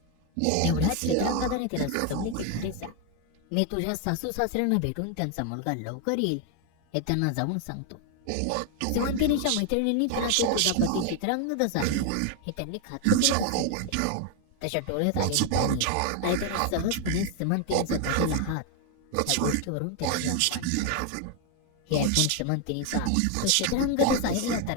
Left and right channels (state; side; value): different; both; correlation 0.01